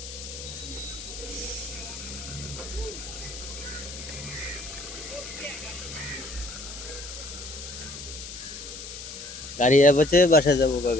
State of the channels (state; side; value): noise; left; hiss, 10 dB below the sound